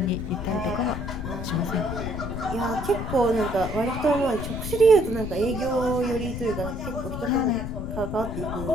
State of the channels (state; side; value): noise; left; rumble, 6 dB below the sound